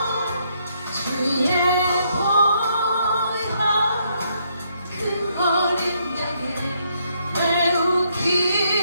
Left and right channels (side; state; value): both; inverted; correlation -0.73